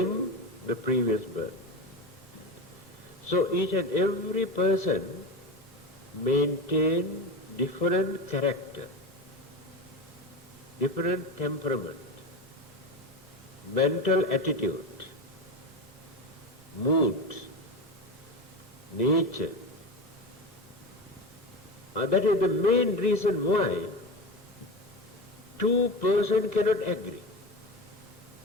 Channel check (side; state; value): both; normal; correlation 0.24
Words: the previous birth. So each and every person maintain different character, different temperament, mental attitude, mood, nature. That is the main reason why two persons cannot agree.